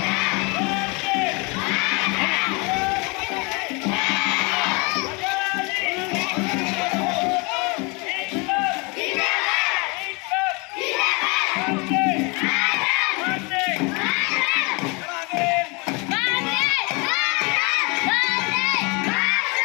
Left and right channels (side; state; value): right; quieter; 29.4 dB